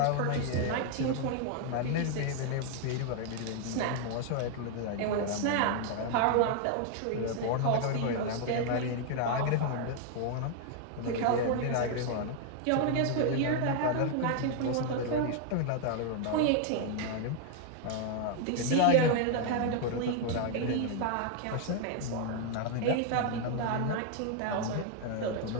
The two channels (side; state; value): both; different; correlation 0.00